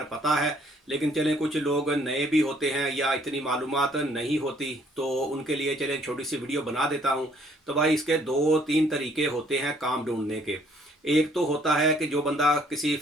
पता है, लेकिन चले कुछ लोग नए भी होते हैं या इतनी मालूमात नहीं होती, तो उनके लिए चले छोटी सी वीडियो बना देता हूँ। तो भाई इसके दो तीन तरीके होते हैं काम ढूंढने के। एक तो होता है कि जो बंदा किसी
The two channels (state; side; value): normal; both; correlation 0.63